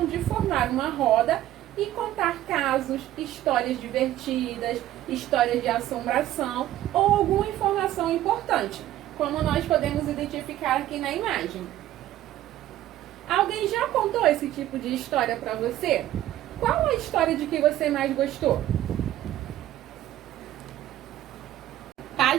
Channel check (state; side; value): quieter; left; 13.5 dB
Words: de formar uma roda e contar casos, histórias divertidas, histórias de assombração ou alguma informação importante, como nós podemos identificar aqui na imagem. Alguém já contou esse tipo de história para você? Qual a história de que você mais gostou?